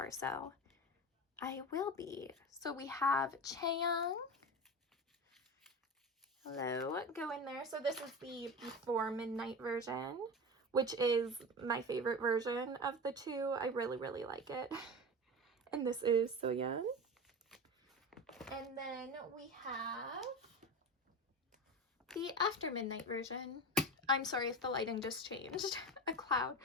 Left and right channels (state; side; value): normal; both; correlation 0.27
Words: so I will be. So we have Chaeyoung. Hello, go in there. So this is the Before Midnight version, which is my favorite version of the two. I really, really like it. And this is Soyeon. And then we have the After Midnight version. I'm sorry if the lighting just changed. A cloud.